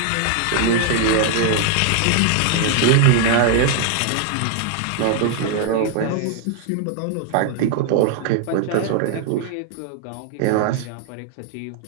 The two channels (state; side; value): different; both; correlation 0.00